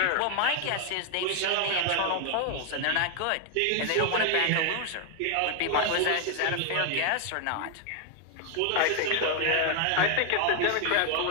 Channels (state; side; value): different; both; correlation 0.00